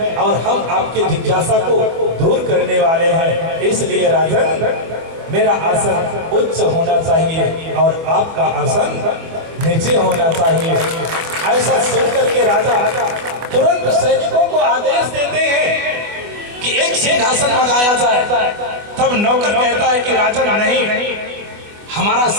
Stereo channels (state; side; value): late; left; 24 ms